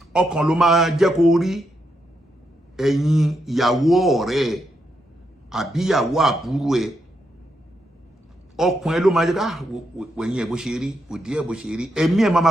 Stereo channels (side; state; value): both; normal; correlation 0.81